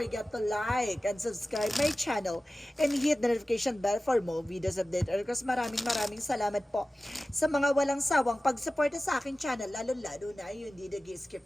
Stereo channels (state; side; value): normal; both; correlation 0.96